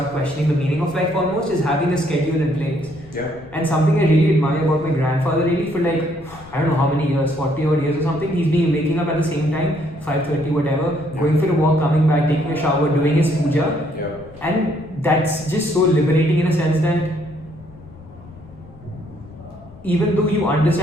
questioning the meaning of life almost is having a schedule in place. Yeah. And something I really admire about my grandfather really for like, I don't know how many years, 40 odd years or something, he's been waking up at the same time, 5:30 whatever, going for a walk, coming back, taking a shower, doing his puja. Yeah. And that's just so liberating in a sense that even though you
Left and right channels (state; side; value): noise; left; rumble, 21 dB below the sound